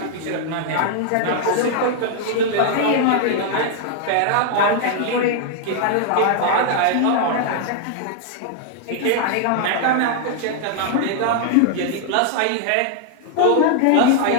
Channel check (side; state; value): both; different; correlation 0.00